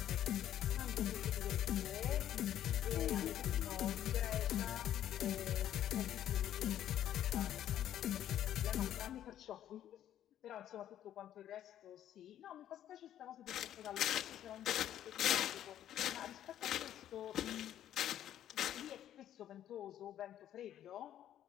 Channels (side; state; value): right; quieter; 11.3 dB